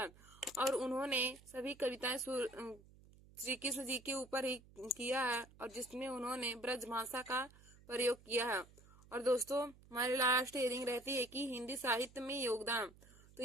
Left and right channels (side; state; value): right; noise; hum, 24 dB below the sound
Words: और उन्होंने सभी कविताएं श्री कृष्ण जी के ऊपर ही किया है और जिसमें उन्होंने ब्रज भाषा का प्रयोग किया है। और दोस्तों, हमारी लास्ट हेडिंग रहती है कि हिंदी साहित्य में योगदान। तो